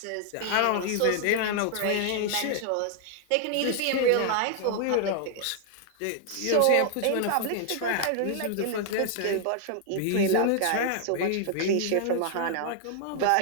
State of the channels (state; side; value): different; both; correlation 0.00